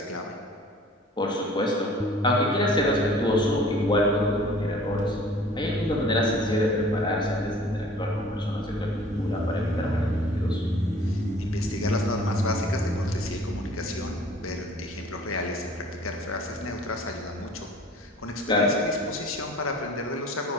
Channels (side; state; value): both; normal; correlation 0.49